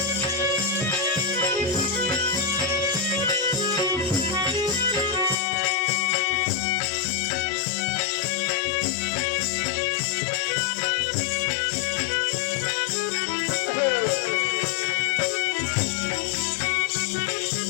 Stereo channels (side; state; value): right; drops out; at 5.4 s